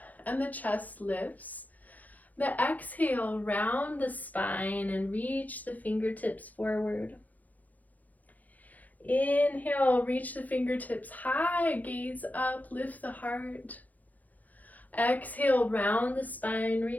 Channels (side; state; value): right; late; 0.079 ms